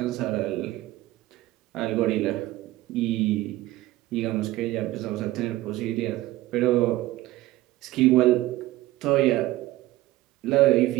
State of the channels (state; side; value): quieter; left; 16.9 dB